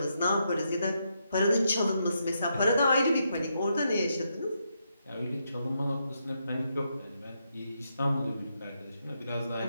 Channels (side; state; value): both; inverted; correlation -0.81